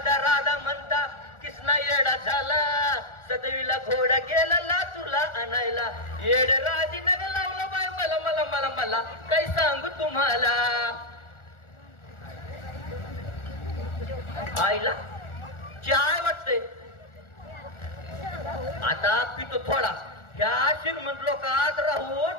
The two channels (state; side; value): late; right; 1.4 ms